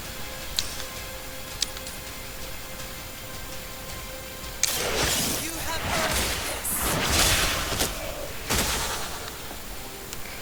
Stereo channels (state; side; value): identical; both; correlation 1.00